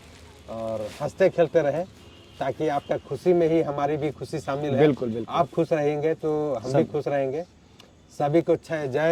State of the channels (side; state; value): both; identical; correlation 1.00